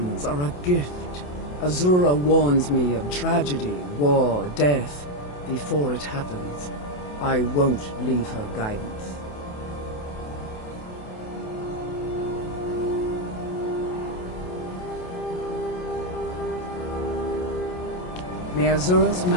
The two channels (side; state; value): right; late; 28 ms